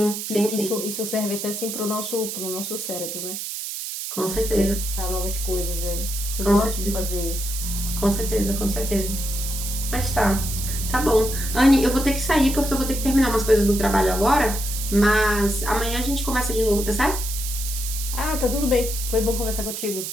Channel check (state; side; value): noise; right; hiss, 6 dB below the sound